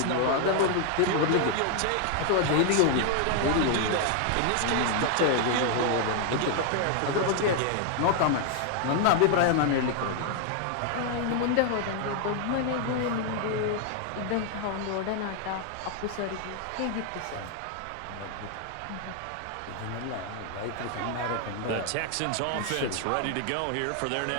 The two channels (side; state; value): both; different; correlation 0.00